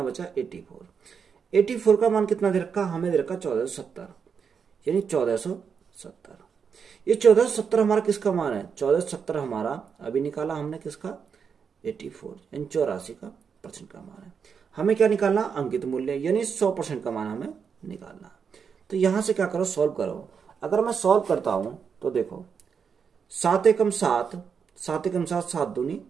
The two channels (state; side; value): quieter; left; 6.5 dB